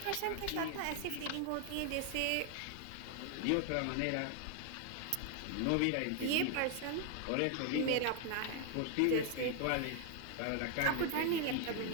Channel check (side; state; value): both; different; correlation 0.00